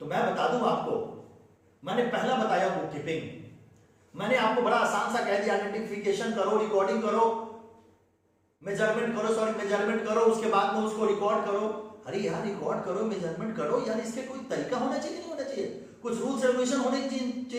तो मैं बता दूं आपको, मैंने पहला बताया बुक कीपिंग। मैंने आपको बड़ा आसान सा कह दिया, आइडेंटिफिकेशन करो, रिकॉर्डिंग करो, मेजरमेंट करो, उसके बाद में उसको रिकॉर्ड करो। अरे यार रिकॉर्ड करो, मेजरमेंट करो यार, इसके कोई तरीका होना चाहिए नहीं होना चाहिए? कुछ रूल्स रेगुलेशन होने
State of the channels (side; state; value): both; identical; correlation 1.00